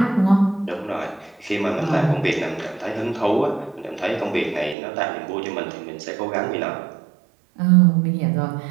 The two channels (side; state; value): left; drops out; at 4.8 s